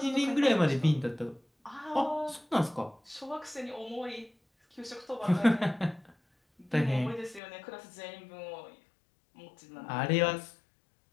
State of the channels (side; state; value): right; drops out; at 7.4 s